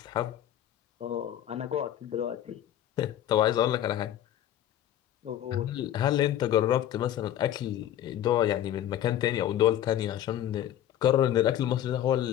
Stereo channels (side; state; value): right; quieter; 11.7 dB